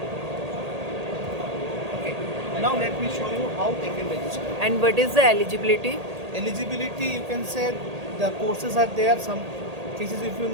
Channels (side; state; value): left; late; 1.8 ms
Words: Okay. Now let me show you how they can register. And what is the eligibility? Eligibility, you can say the courses are there. Some cases, if you